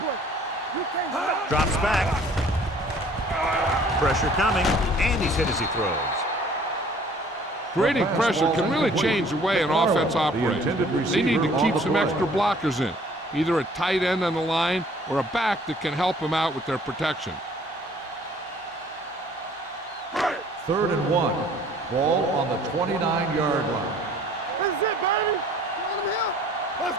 Drops back. Pressure coming, and he's hit as he throws. Creating pressure can really change the way an offense operates. They need to keep some extra blockers in, either a tight end on the line or a back that can help them out with their protection. 3rd and 1. Ball on the 29-yard line. This is it, baby. Let's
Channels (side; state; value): both; normal; correlation 0.55